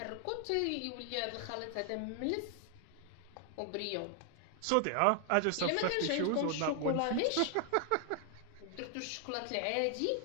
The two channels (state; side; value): different; both; correlation 0.00